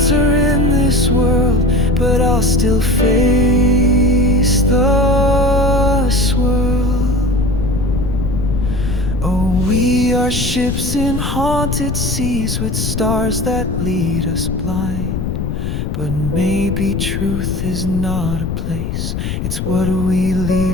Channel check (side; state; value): left; noise; rumble, 3 dB below the sound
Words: in this world, but I'll still face the swirl. Oh, we are ships in haunted seas with stars that lead us blind. But maybe truth is not a place, it's what we